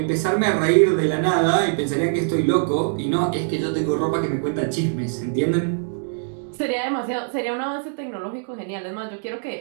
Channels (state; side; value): silent; left; digital silence